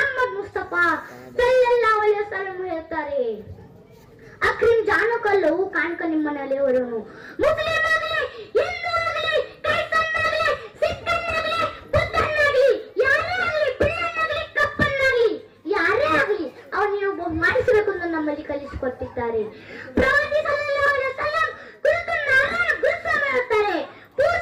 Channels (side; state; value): both; identical; correlation 1.00